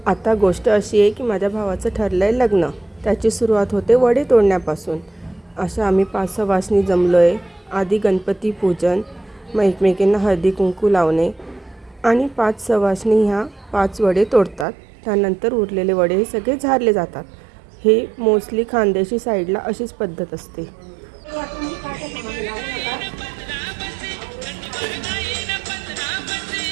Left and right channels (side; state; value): left; drops out; at 14.7 s